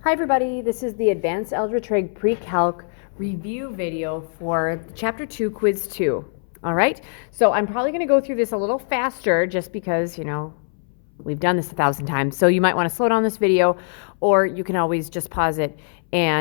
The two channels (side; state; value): right; silent; 62 dB below the other